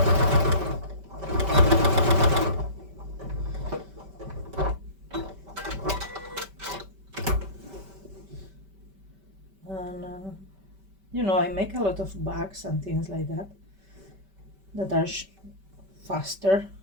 And you know, I make a lot of bags and things like that that are faster,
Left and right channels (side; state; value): left; late; 5.2 ms